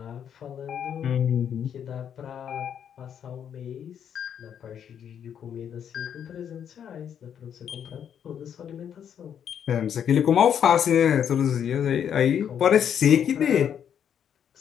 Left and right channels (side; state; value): right; quieter; 8.7 dB